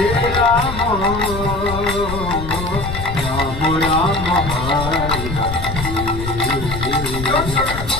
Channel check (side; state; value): left; noise; rumble, 7 dB below the sound